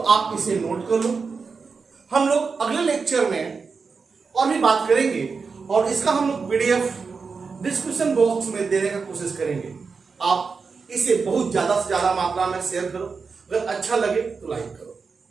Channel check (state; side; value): quieter; left; 5.0 dB